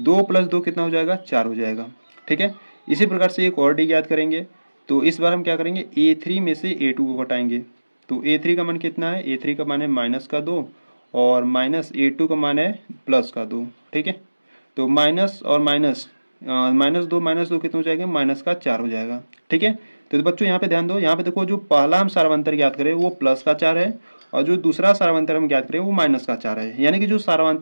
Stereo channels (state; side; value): inverted; both; correlation -1.00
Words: + 2 कितना हो जाएगा, 4 हो जाएगा। ठीक है, इसी प्रकार से एक और डी ज्ञात करेंगे। तो इस बार हम क्या करेंगे, A3 में से A2 को घटाएंगे। तो A3 का मान कितना है, A3 का मान है -2 और -A2 का मान है +2। ठीक है, तो माइनस और माइनस, -2 कितना हो जाएगा, -4 हो जाएगा। ठीक है, तो बच्चों यहाँ पे ध्यान दो, यहाँ पे देखो जो पहला हम सार्वंतर ज्ञात करें वो +4 है और जो दूसरा सार्वंतर हम ज्ञात करें वो -4 है, यानी कि जो